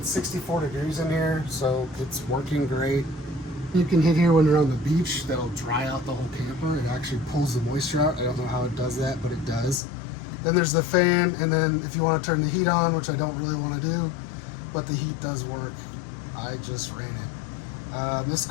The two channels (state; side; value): drops out; right; at 9.8 s